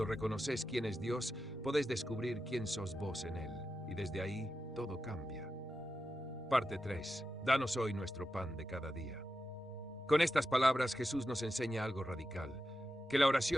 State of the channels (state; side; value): normal; both; correlation 0.90